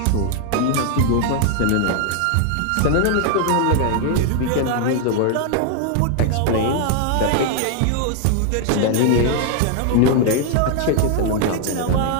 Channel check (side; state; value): both; different; correlation 0.00